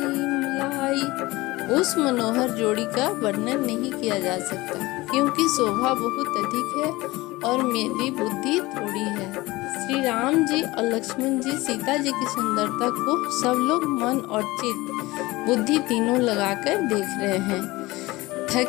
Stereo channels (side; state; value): right; quieter; 20.4 dB